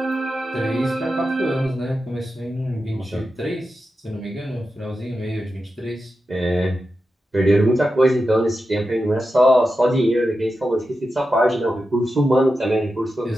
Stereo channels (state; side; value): normal; both; correlation 0.90